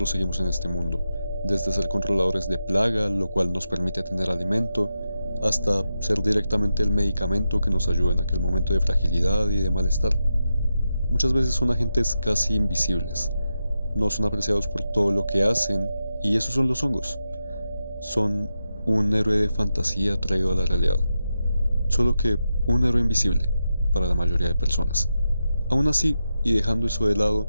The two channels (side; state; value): both; inverted; correlation -0.88